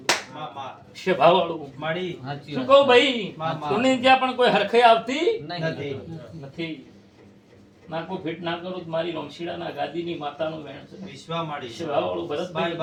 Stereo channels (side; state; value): both; identical; correlation 1.00